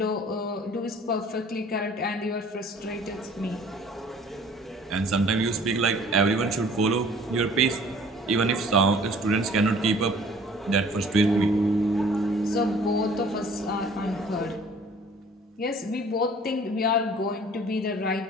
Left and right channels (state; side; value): normal; both; correlation 0.52